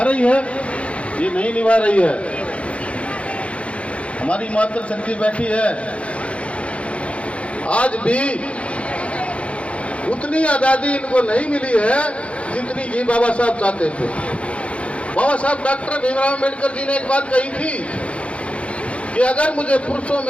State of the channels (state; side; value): late; right; 0.062 ms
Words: रही है? ये नहीं निभा रही है। हमारी मातृशक्ति बैठी है, आज भी उतनी आज़ादी इनको नहीं मिली है जितनी कि बाबा साहब चाहते थे। बाबा साहब डॉक्टर भीमराव अम्बेडकर जी ने एक बात कही थी कि अगर मुझे पुरुषों